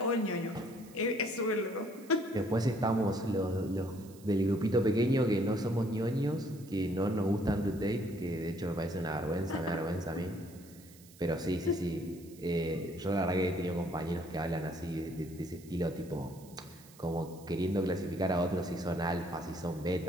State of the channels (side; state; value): right; noise; hiss, 23 dB below the sound